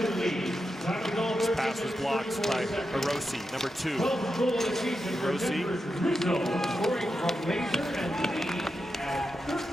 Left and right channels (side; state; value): both; normal; correlation 0.88